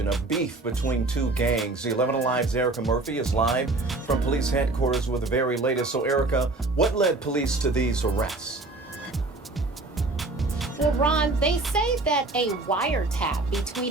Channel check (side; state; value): left; quieter; 3.2 dB